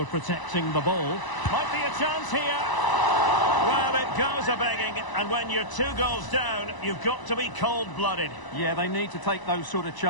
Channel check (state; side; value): late; right; 1.0 ms